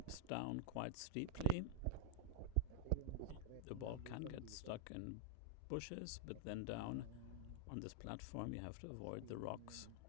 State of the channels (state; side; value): different; both; correlation -0.01